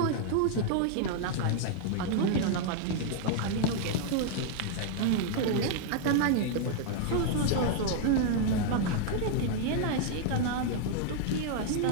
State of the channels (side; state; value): both; different; correlation 0.00